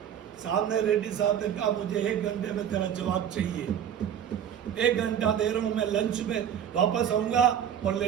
सामने रेड्डी साहब ने कहा मुझे 1 घंटे में तेरा जवाब चाहिए, 1 घंटा दे रहा हूं, मैं लंच में वापस आऊंगा और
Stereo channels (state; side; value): quieter; left; 9.2 dB